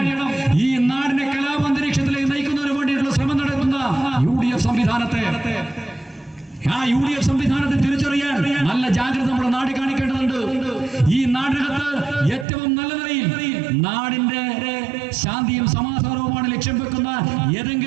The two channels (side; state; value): left; drops out; at 12.5 s